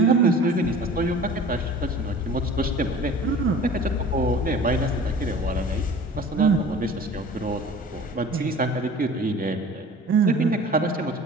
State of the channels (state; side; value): normal; both; correlation 0.43